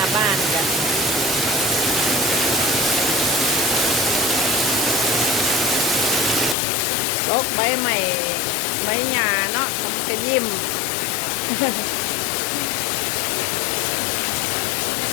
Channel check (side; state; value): right; drops out; at 6.6 s